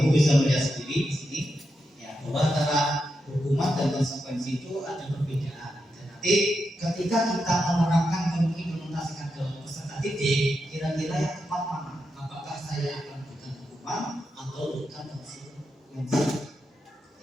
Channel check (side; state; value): both; normal; correlation 0.86